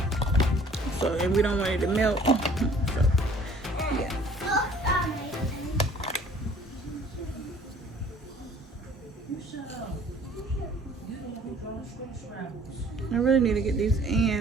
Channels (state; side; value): normal; both; correlation 0.53